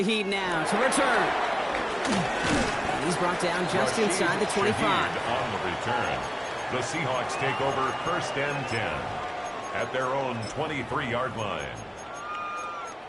now to return. And he's brought down just inside the 25. On the return, the Seahawks take over 1st and 10 at their own 23-yard line.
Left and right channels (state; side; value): identical; both; correlation 1.00